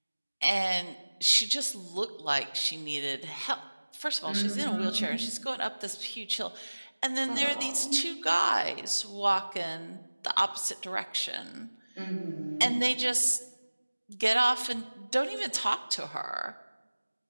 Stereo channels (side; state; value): both; inverted; correlation -1.00